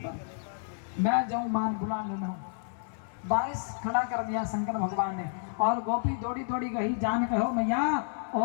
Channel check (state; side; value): silent; right; 58 dB below the other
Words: मैं जाऊं मान बुला लेना हूं। बारिश खड़ा कर दिया शंकर भगवान ने और गोपी दौड़ी दौड़ी गई जान कहो मैया